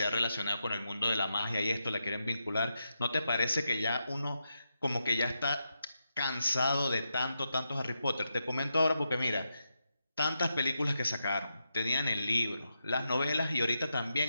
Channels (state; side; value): inverted; both; correlation -0.86